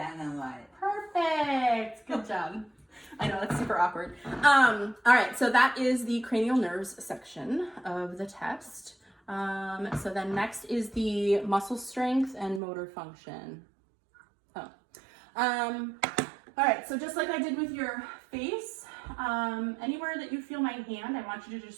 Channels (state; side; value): drops out; left; at 12.6 s